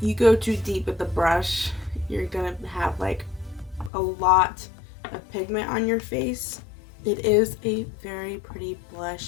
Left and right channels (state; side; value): drops out; right; at 3.9 s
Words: go too deep with the brush, you're gonna have like a lot of pigment on your face. It is a very pretty